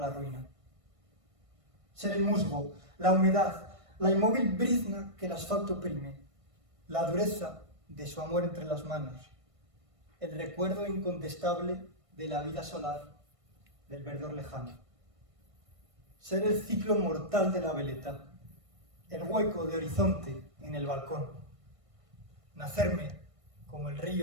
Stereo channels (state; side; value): late; left; 1.5 ms